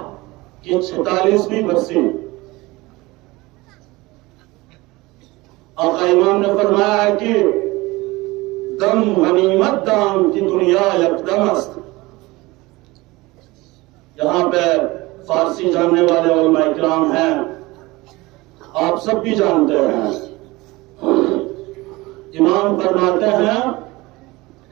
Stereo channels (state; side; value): quieter; left; 21.4 dB